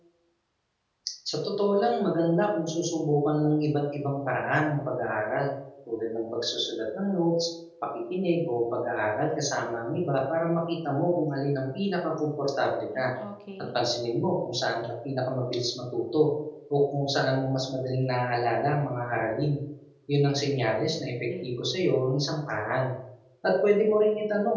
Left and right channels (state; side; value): identical; both; correlation 1.00